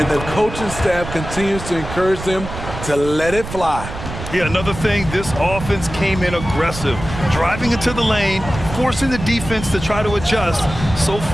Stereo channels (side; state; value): right; noise; rumble, 9 dB below the sound